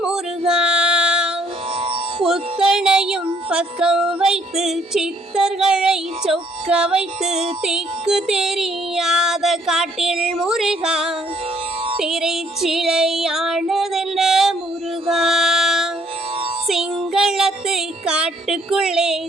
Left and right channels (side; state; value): both; normal; correlation 0.65